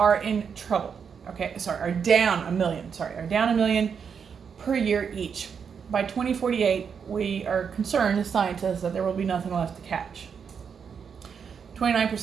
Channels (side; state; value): left; quieter; 6.7 dB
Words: in trouble, okay? Are down $1 million per year each. By 2048, we are concerned as scientists that there will be nothing left to catch. 29%